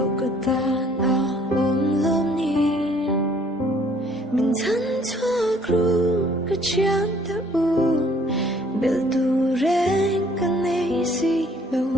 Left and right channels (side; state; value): both; normal; correlation 0.60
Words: katan a om lom ni min than chua kru ka chiang ta u bel tu reng ka nei si lo